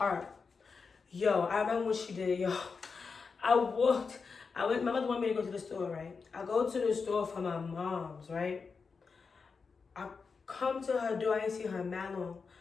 Yo, I remember what she did, yo. My mother wanted me to go to the store, right? I go to the store for my mom's, right? I come to her door, I didn't see her man long.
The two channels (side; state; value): right; quieter; 5.0 dB